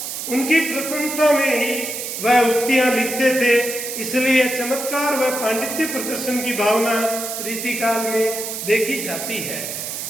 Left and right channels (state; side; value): noise; right; hiss, 6 dB below the sound